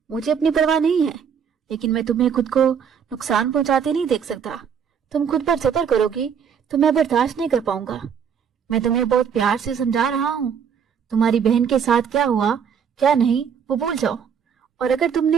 मुझे अपनी परवाह नहीं है, लेकिन मैं तुम्हें खुद को नुकसान पहुंचाते नहीं देख सकता। तुम खुद पर जबर करोगी तो मैं बर्दाश्त नहीं कर पाऊंगा। मैं तुम्हें बहुत प्यार से समझा रहा हूँ। तुम्हारी बहन के साथ क्या हुआ क्या नहीं वो भूल जाओ। और अगर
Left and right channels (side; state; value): left; quieter; 7.4 dB